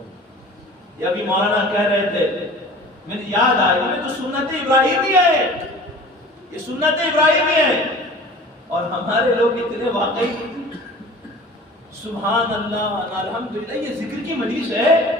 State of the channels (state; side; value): normal; both; correlation 0.43